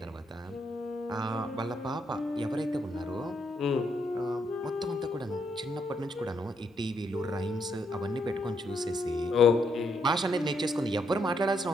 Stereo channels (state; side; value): normal; both; correlation 0.76